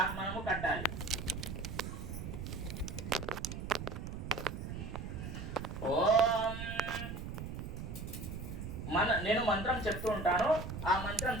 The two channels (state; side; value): noise; right; rumble, 6 dB below the sound